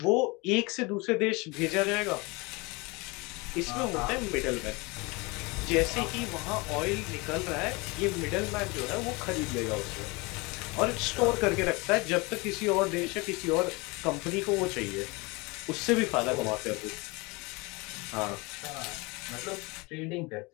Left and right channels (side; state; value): right; quieter; 26.1 dB